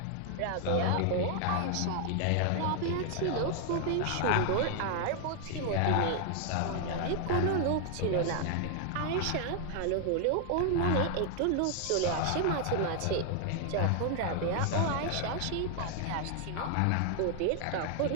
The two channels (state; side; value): different; both; correlation 0.00